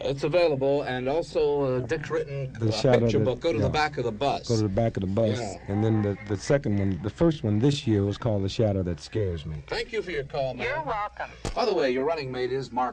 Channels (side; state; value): both; identical; correlation 1.00